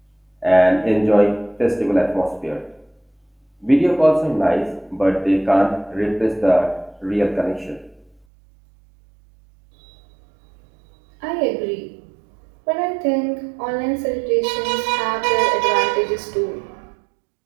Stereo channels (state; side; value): drops out; left; at 8.2 s